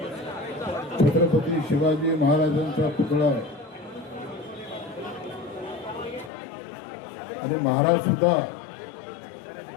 छत्रपती शिवाजी महाराजांचा पुतळा आणि महाराज सुद्धा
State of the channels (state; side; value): drops out; right; at 6.3 s